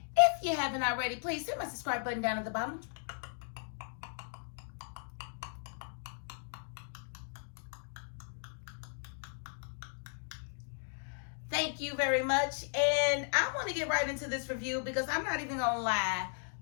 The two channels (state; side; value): silent; right; digital silence